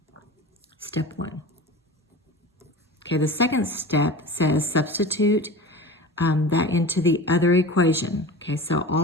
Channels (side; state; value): both; normal; correlation 0.33